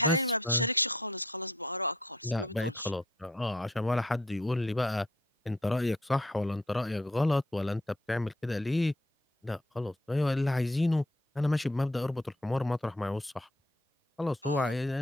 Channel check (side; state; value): both; normal; correlation 0.64